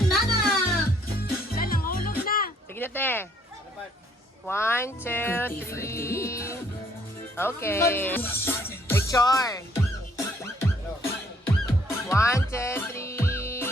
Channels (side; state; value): both; normal; correlation 0.65